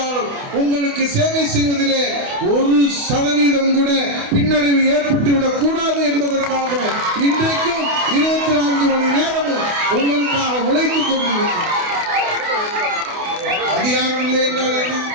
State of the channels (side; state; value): left; late; 28 ms